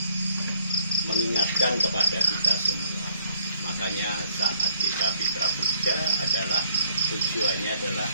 mengingatkan kepada kita semua. Makanya saat kita Fitra Puja adalah tujuannya adalah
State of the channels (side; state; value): both; inverted; correlation -0.67